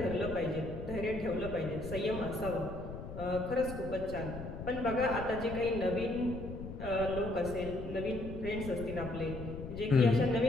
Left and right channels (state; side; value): noise; left; rumble, 9 dB below the sound